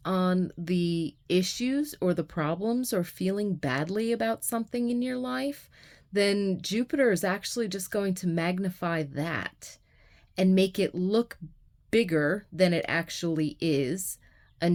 on the issues or the problems or feeling badly about something in your life, then Jupiter is actually just going to magnify that and make it look bigger than it actually is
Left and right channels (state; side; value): identical; both; correlation 1.00